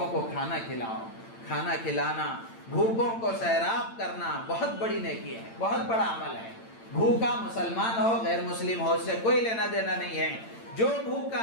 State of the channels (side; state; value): right; late; 8.9 ms